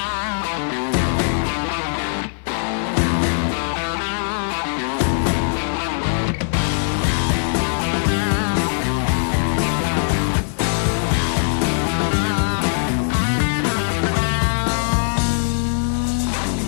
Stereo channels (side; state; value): right; silent; 56 dB below the other